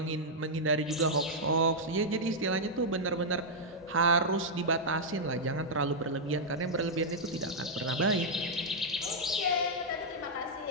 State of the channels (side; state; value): both; normal; correlation -0.05